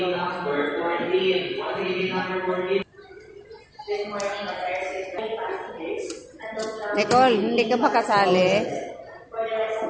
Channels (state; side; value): identical; both; correlation 1.00